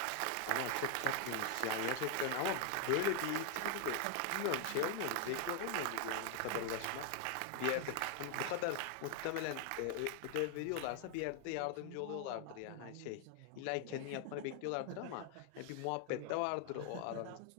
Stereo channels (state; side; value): different; both; correlation 0.00